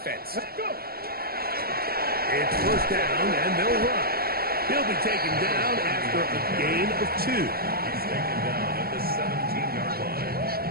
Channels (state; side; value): late; left; 0.44 ms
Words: It's first down, and they'll run. He'll be taken down after a gain of 2. He's taken down at the 17-yard line.